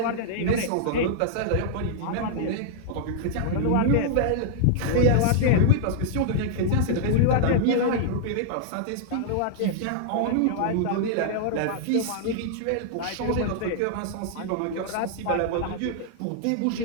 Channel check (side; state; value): both; different; correlation -0.01